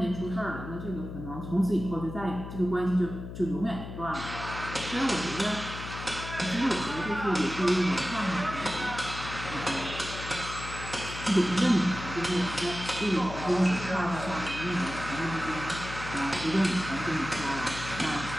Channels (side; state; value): left; noise; hum, 9 dB below the sound